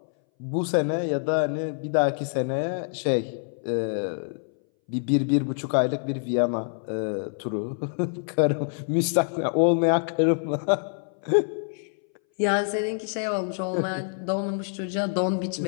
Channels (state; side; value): silent; right; 60 dB below the other